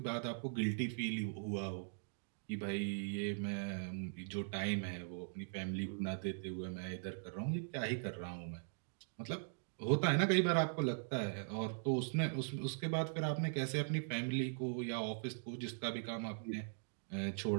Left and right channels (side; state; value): left; silent; digital silence